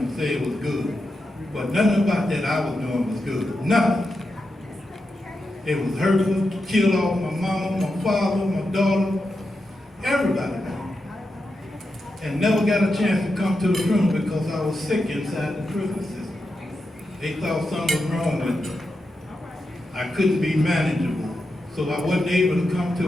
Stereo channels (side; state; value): both; normal; correlation 0.88